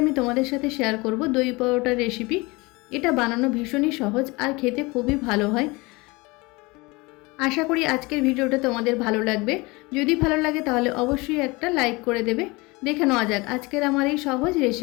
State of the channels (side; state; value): right; quieter; 24.5 dB